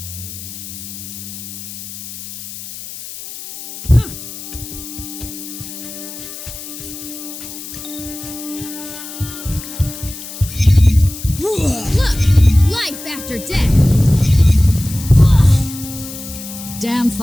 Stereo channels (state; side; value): noise; left; hiss, 11 dB below the sound